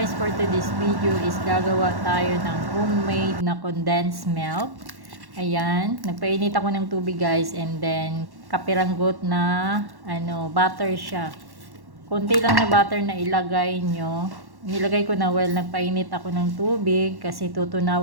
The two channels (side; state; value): left; late; 1.1 ms